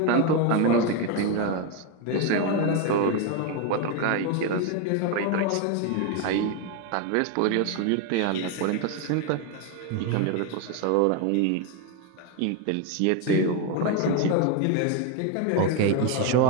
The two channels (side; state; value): both; different; correlation 0.02